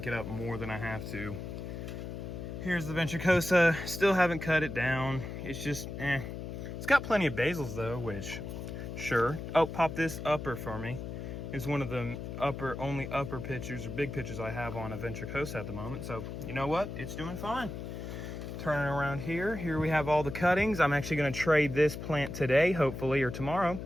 it up more than I have to. Here's the ventricosa. Still haven't cut it down. It's just, It's got plenty of basils though, which, sure. Oh, pop this upper for me. It's one of the only upper pictures or big pictures I have on a ventricosa at the moment. So, you know what? It's doing fine. Turning around here we have all the cuttings. I'm actually going to trade this plant today, hopefully, or tomorrow.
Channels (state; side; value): noise; left; hum, 7 dB below the sound